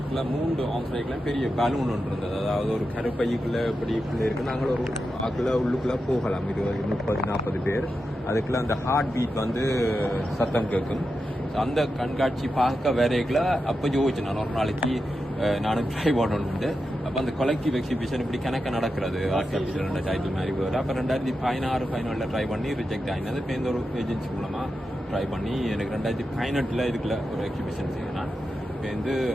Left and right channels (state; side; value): normal; both; correlation 0.89